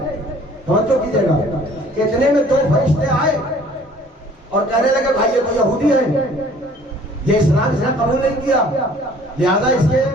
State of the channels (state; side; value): normal; both; correlation 0.54